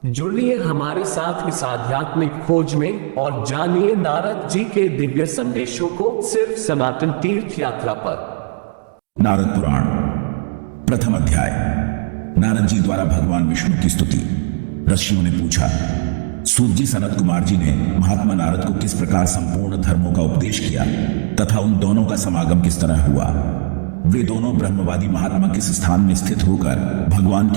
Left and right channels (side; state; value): left; silent; digital silence